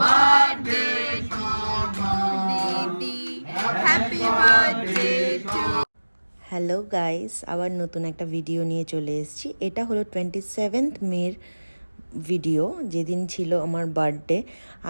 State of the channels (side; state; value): both; inverted; correlation -1.00